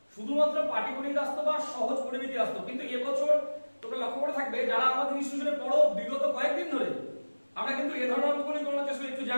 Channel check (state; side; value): inverted; both; correlation -1.00